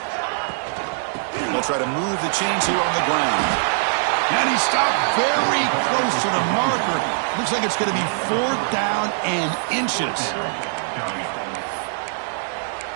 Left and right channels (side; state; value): left; silent; digital silence